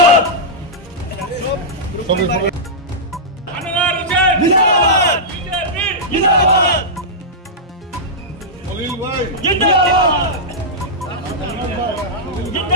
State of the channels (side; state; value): both; normal; correlation -0.11